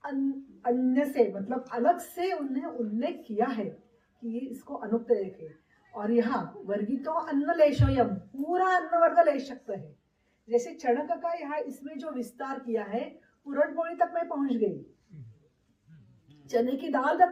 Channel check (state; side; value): identical; both; correlation 1.00